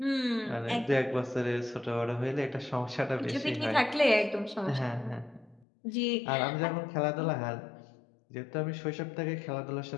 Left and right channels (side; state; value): right; drops out; at 5.7 s